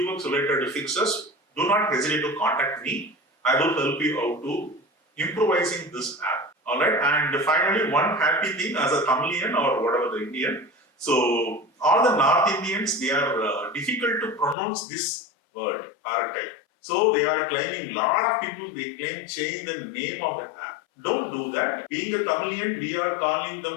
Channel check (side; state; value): right; drops out; at 14.6 s